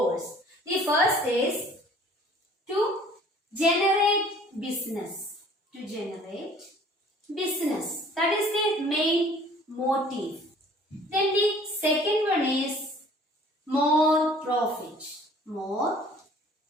The first is to generate business. To generate business. That is the main motive. Then the second one is more profit. More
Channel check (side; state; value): both; normal; correlation 0.52